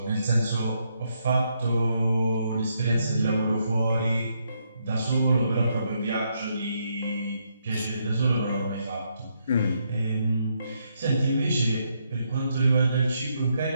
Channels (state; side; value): inverted; both; correlation -0.77